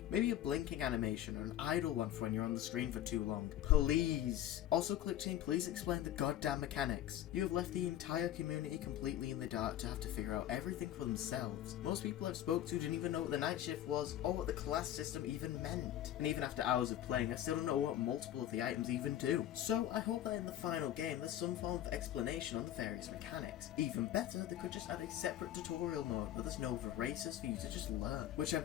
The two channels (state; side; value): quieter; right; 12.1 dB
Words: Maybe a blinking animation or an idle one for when you're on the screen for too long. Please. Also, Clickteam, please explain the goddamn mechanics. You have left the entire community completely in the dark to have to figure out everything for themselves. Most people I've spoke to didn't even know what the night shift was or what the class system even meant. And even after hours of playing, I still don't know what multiple of the items even do. So I hope that in the final game there's some form of explanation on the various mechanics. Even better, they could just add a separate tutorial mode where there's no races for you to just learn. Which